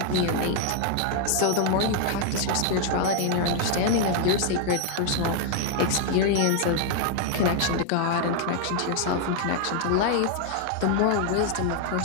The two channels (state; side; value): different; both; correlation 0.00